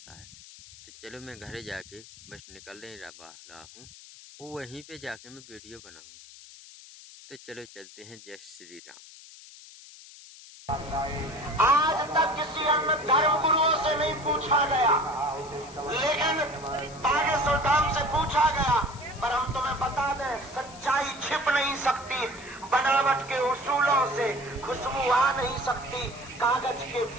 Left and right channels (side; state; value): left; noise; hiss, 19 dB below the sound